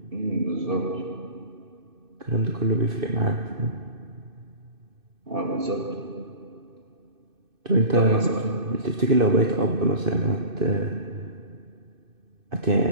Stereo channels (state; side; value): late; left; 2.6 ms